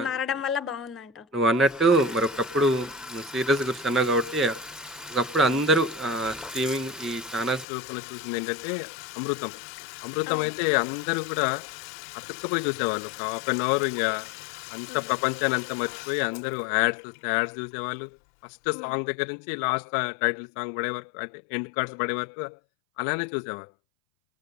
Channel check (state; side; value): drops out; right; at 7.7 s